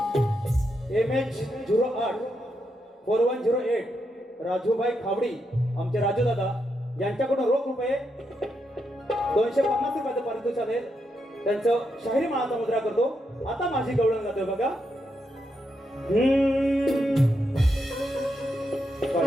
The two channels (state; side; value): normal; both; correlation 0.82